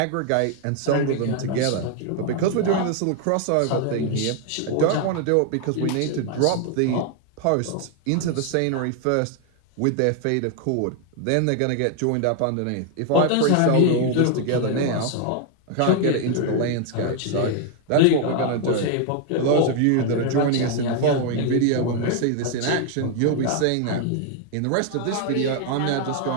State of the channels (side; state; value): both; different; correlation 0.00